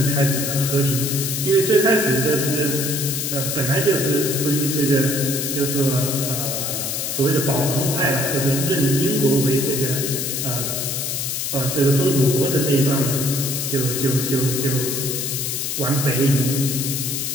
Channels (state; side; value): noise; left; hiss, 2 dB below the sound